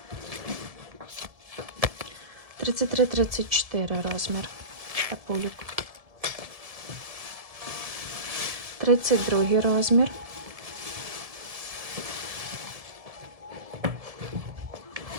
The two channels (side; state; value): left; late; 1.7 ms